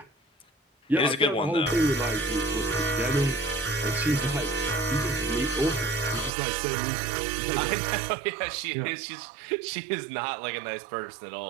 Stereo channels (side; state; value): left; drops out; at 6.3 s